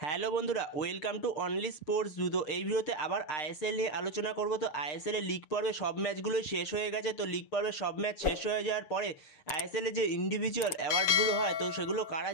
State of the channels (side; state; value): right; late; 7.1 ms